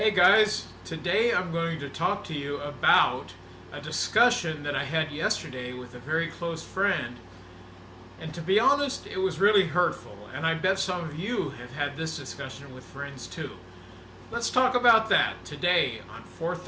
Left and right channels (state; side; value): identical; both; correlation 1.00